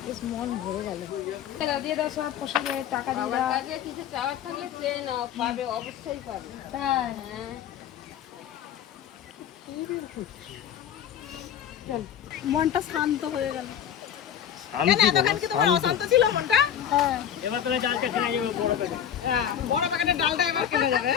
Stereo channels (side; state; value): right; quieter; 9.5 dB